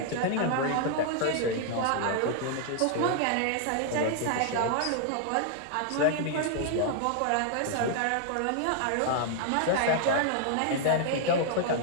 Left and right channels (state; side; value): different; both; correlation 0.00